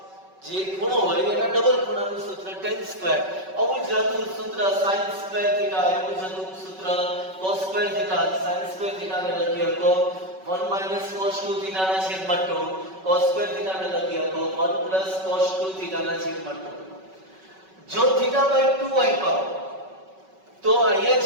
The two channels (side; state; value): left; late; 5.3 ms